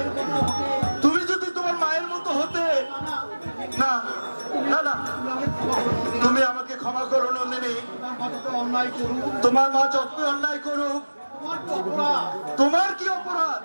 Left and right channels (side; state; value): both; inverted; correlation -1.00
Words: মতো হতে তুমি যদি তোমার মায়ের মতো হতে, না, না না না, তুমি আমাকে ক্ষমা করো নন্দিনী। তুমি আমাকে ক্ষমা করো নন্দিনী। তোমার মা যত অন্যায় করুক, তোমার মা যতই অন্যায় করুক, তোমার কি অপরাধ?